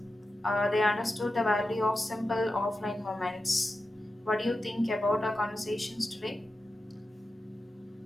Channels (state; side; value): normal; both; correlation 0.90